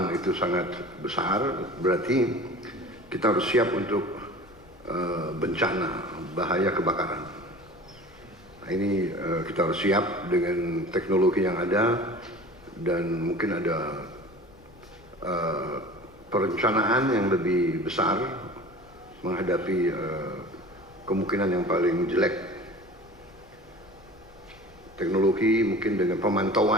itu sangat besar, berarti kita harus siap untuk bencana, bahaya kebakaran. Nah, ini kita harus siap dengan teknologi yang ada, dan mungkin ada perencanaan yang lebih besar menghadapi kemungkinan yang paling jelek. Teknologi mungkin dengan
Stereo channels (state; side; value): noise; left; rumble, 25 dB below the sound